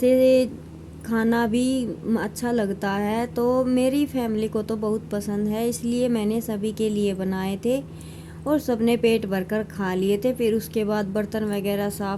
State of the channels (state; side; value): identical; both; correlation 1.00